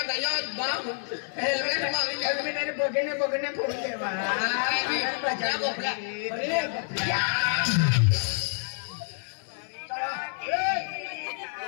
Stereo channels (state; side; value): silent; right; 59 dB below the other